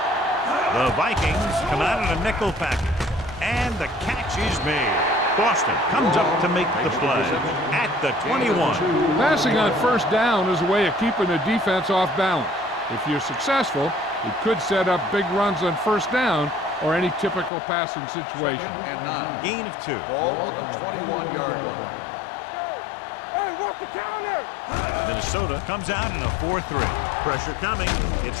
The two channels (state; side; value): drops out; right; at 17.5 s